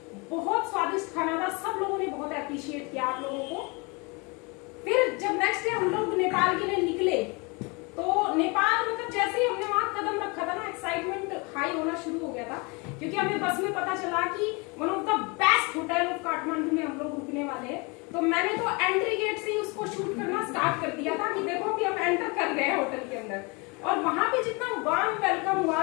बहुत स्वादिष्ट खाना था, सब लोगों ने बहुत अप्रिशिएट किया आप लोगों को। फिर जब नेक्स्ट डे हम लोग नेपाल के लिए निकले, तो नेपाल मतलब जैसे ही हमने वहां कदम रखा था ना, एक्साइटमेंट हाई होना शुरू हो गया था, क्योंकि हमें बस में पता चला कि one of the best hotel of Kathmandu में हम लोग रुकने वाले हैं। तो मैंने तो एंट्री गेट से ही उसको शूट करना स्टार्ट कर दिया था कि देखो कि हम एंटर कर गए हैं होटल के अंदर। और वहां पे जितना वार्म वेलकम हुआ,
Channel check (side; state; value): right; quieter; 29.1 dB